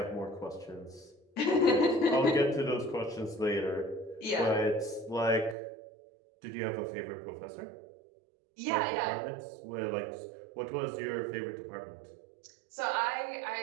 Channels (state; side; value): drops out; left; at 5.6 s